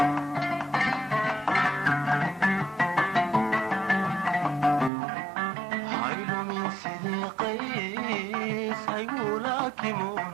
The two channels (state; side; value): drops out; left; at 4.9 s